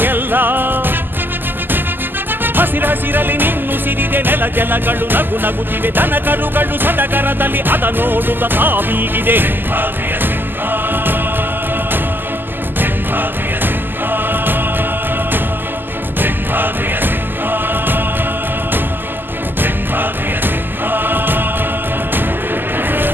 ಎಲ್ಲ ಹಸಿರಸಿರಲಿ ನಿನ್ನುಸಿರಿದೆ ನೆಲ ಜಲಗಳು ನಗು ನಗುತ್ತಿವೆ ದನ ಕರುಗಳು ಸಡಗರದಲ್ಲಿ ಅದ ನೋಡುತ್ತ ತಾವೀಗಿದೆ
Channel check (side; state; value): left; late; 0.092 ms